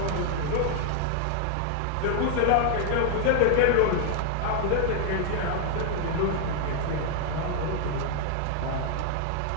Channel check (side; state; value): both; different; correlation -0.01